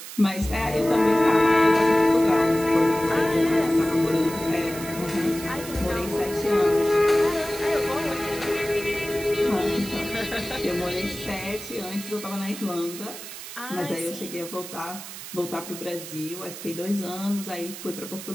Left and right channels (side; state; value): right; noise; hiss, 11 dB below the sound